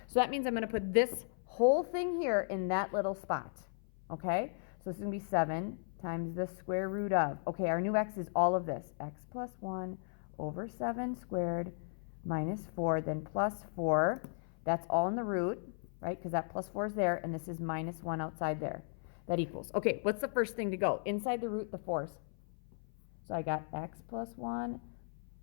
So that means I'm going to put this whole thing here in that little spot, okay? So this is going to be 7 times the square root of, okay, our new x is all of this, x plus 1 over 7 squared minus 4, then plus 4. That's all in the root, right, because that plus 4 is there, and this is minus 1 outside there. That equals, okay, what's the first thing to go? Inside the root, the 4's. So I got x plus 1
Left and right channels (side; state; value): right; silent; 54 dB below the other